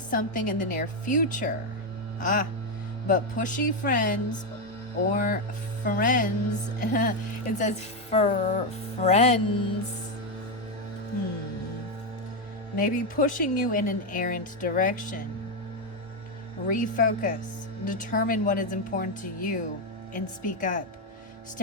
in the near future. But pushy friends or friends, it says for friends, maybe pushing you in an errant direction. Refocus. Determine what is important to you and speak up.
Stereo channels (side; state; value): both; normal; correlation 0.05